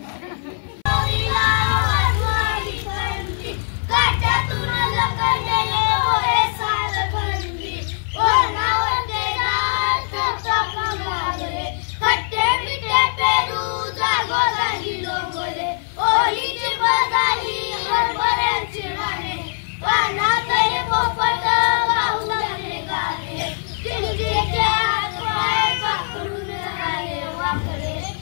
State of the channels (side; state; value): right; silent; 61 dB below the other